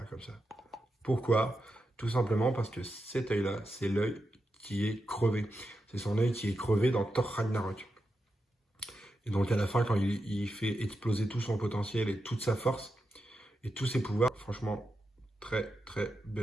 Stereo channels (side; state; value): both; normal; correlation 0.88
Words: comme ça. Pourquoi? Tout simplement parce que cet œil-là, c'est l'œil qui est crevé. C'est son œil qui est crevé dans Thor Ragnarok. Et donc à la fin, quand il fait exploser tout son potentiel et toute sa force et tous ses pouvoirs, franchement, très très